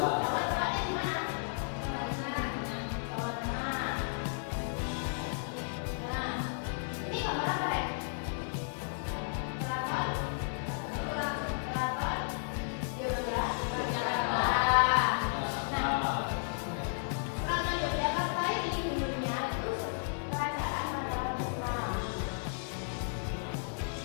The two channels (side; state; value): right; silent; 55 dB below the other